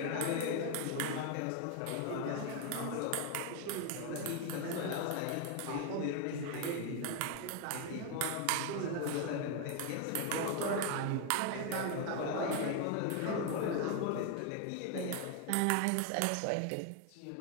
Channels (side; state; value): both; different; correlation 0.01